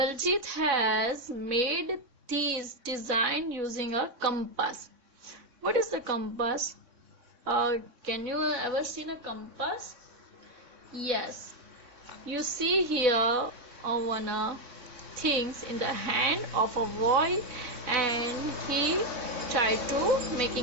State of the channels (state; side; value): late; left; 3.6 ms